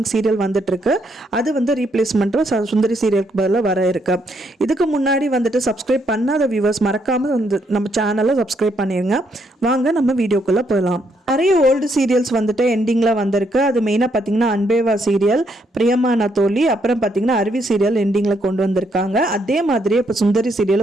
சீரியல் வந்துட்டுருக்கு. அது வந்து ரீப்ளேஸ்மெண்ட்டும் சுந்தரி சீரியலுக்கு பதிலாக வர இருக்கு. இதுக்கு முன்னாடி வந்துட்டு சப்ஸ்கிரைப் பண்ணாத வியூவர்ஸ் மறக்காமல் வந்து நம்ம சேனலை சப்ஸ்கிரைப் பண்ணிடுங்க. வாங்க நம்ம வீடியோக்குள்ளே போகலாம். நிறைய ஓல்டு சீரியல்ஸ் வந்துட்டு எண்டிங்கில் வந்திருக்கு. அது மெயினாக பார்த்தீங்கன்னா அன்பேவா சீரியல், பிரியமான தோழி, அப்புறம் பார்த்தீங்கன்னா அருவி சீரியல் எண்டிங்கில் கொண்டு வந்திருக்காங்க. அதே மாதிரியே இப்போ சுந்தரி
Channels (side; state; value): both; normal; correlation 0.74